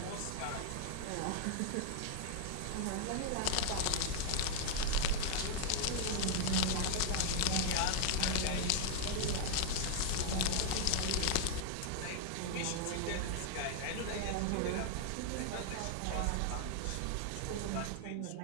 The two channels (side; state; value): both; different; correlation 0.00